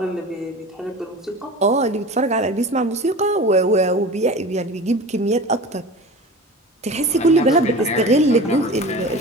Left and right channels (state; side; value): normal; both; correlation 0.34